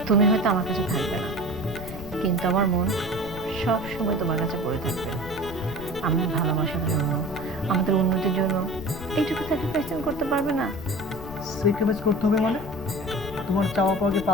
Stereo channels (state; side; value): noise; left; rumble, 12 dB below the sound